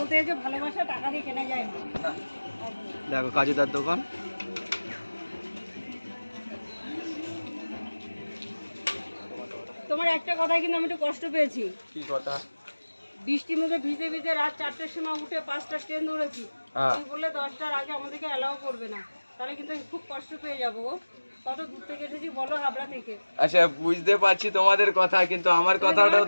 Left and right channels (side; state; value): both; inverted; correlation -1.00